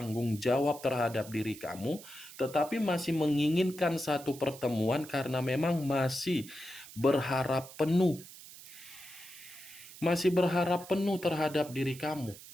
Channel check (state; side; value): noise; right; hiss, 17 dB below the sound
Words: jawab terhadap diri kamu, tetapi masih menginginkan satu pertemuan karena memang masih berharap penuh. Masih berharap penuh terhadap diri kamu.